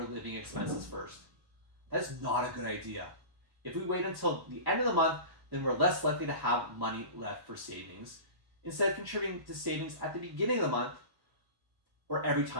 living expenses first. That's not a good idea. If we wait until the end of the month, then we're less likely to have money left for savings. Instead of contributing to savings at the beginning of the month or every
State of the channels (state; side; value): late; left; 1.1 ms